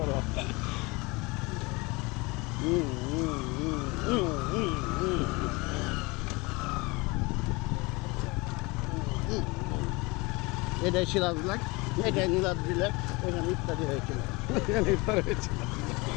এটাই সিরাজ লেক, এটাই নীলাদ্রি লেক, এখানে ইত্যাদি হয়েছিল।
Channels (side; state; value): right; quieter; 25.5 dB